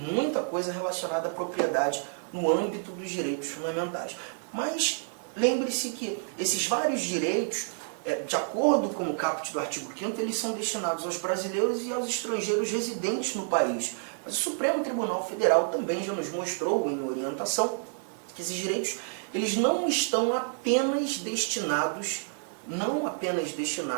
coisa relacionada à propriedade no âmbito dos direitos fundamentais. Mas lembre-se que esses vários direitos, de acordo com o caput do artigo 5º, eles são destinados aos brasileiros e aos estrangeiros residentes no país. Mas o Supremo Tribunal Federal também já nos mostrou em orientação que esses direitos eles não estão apenas destinados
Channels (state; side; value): silent; left; digital silence